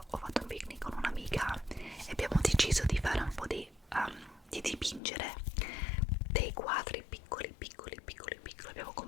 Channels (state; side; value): drops out; right; at 5.0 s